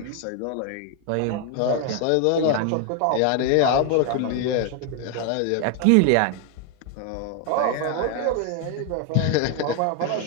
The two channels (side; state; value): both; different; correlation 0.01